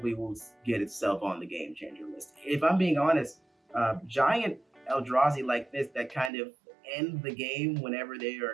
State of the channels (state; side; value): drops out; left; at 6.3 s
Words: will get itself on the game changer list. If I'm being honest, giant Eldrazi like this that kind of end the game whenever they